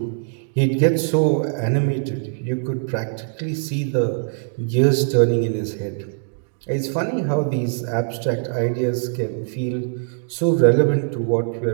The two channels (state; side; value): silent; left; digital silence